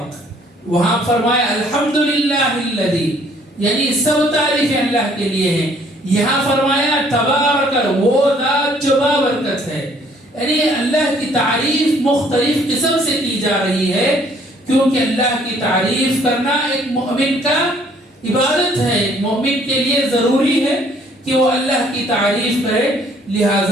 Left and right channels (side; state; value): both; normal; correlation 0.61